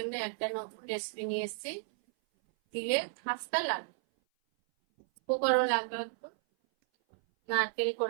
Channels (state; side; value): silent; left; 56 dB below the other